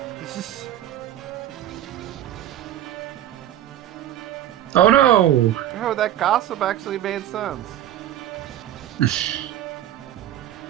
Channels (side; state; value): left; quieter; 12.2 dB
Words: Oh no! Oh, that gossip actually made sense.